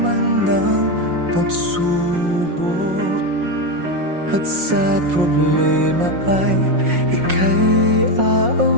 ng pagsubok at sa problema ay ika'y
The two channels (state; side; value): late; left; 5.6 ms